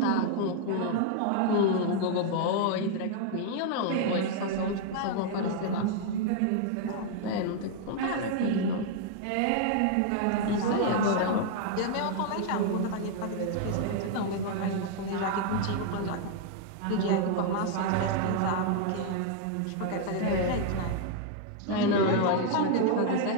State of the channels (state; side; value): different; both; correlation 0.00